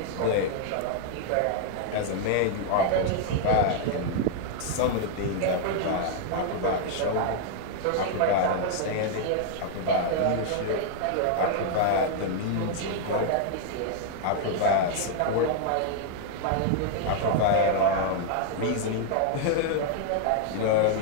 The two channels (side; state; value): both; different; correlation 0.00